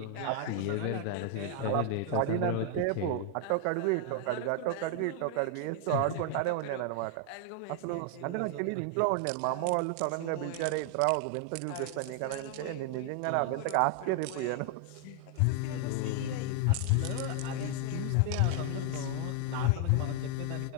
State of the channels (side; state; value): both; different; correlation 0.00